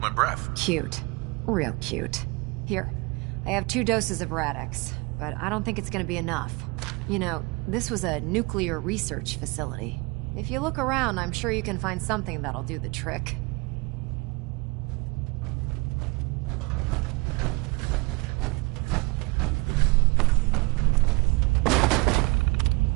my breath. Cute. Real cute. Here, I have 2 doses of Rad-X, but I don't think it's gonna be enough. You know, this was a nuclear research facility. If you look around, I'm sure you can find something that'll do the trick.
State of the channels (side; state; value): left; quieter; 25.8 dB